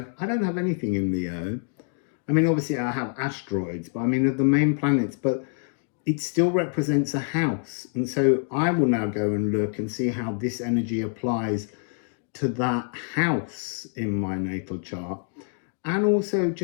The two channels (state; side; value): silent; right; 56 dB below the other